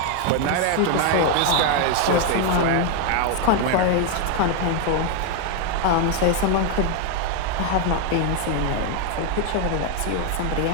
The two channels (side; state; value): both; different; correlation 0.01